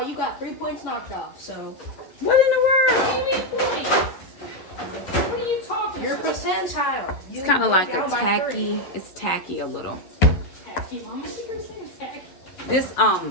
got 3 points knocked off. So What in the world? What do you mean points? What are you talking your about? percentile. It's kind of like a tacky. It's tacky a little. Tacky, Mom. What are you saying? Tacky. This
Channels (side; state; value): right; late; 11 ms